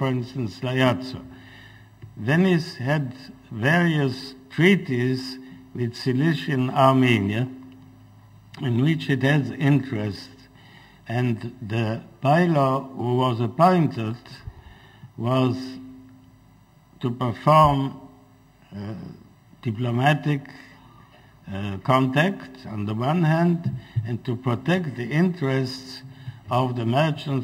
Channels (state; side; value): identical; both; correlation 1.00